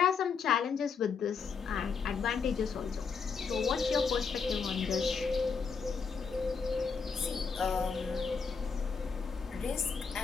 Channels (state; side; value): quieter; right; 5.6 dB